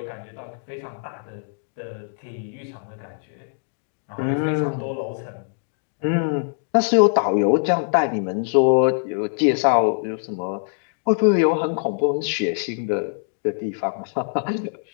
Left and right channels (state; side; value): silent; right; digital silence